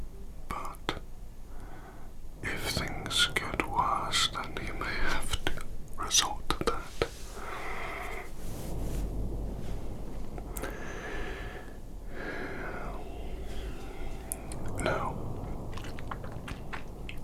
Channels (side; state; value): both; identical; correlation 1.00